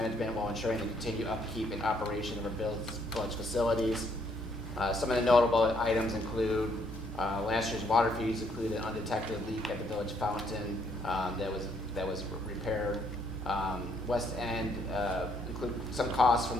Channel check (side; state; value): both; normal; correlation 0.69